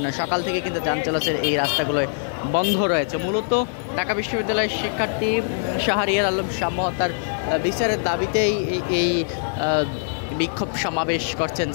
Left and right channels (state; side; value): silent; right; 63 dB below the other